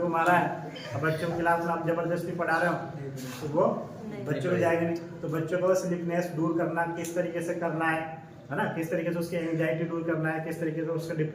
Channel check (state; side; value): identical; both; correlation 1.00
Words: मारा है, अब बच्चों की क्लास में आप जबरदस्ती पढ़ा रहे हो तो वो बच्चों को जाएगा नहीं। तो बच्चों को स्लीपनेस दूर करना किस तरीके से करना है ना, किस तरीके से उसकी एंजाइटी दूर करना है, किस तरीके से उसका